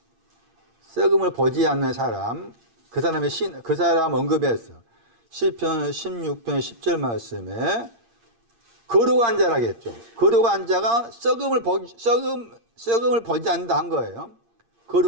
썩음을 보지 않는 사람, 그 사람 언급했어. 시편 16편 10절 말씀에 거룩한 자라겠죠. 거룩한 자가 썩음을 보지 않는다 한 거예요.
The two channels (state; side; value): late; left; 8.7 ms